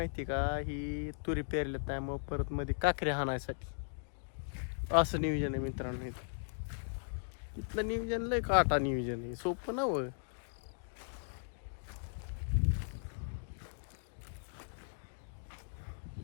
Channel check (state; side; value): silent; right; digital silence